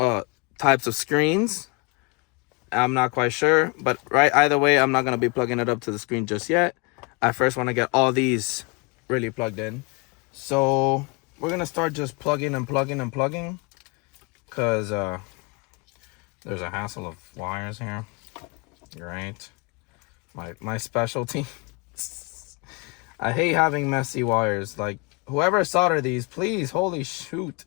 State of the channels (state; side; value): quieter; right; 29.8 dB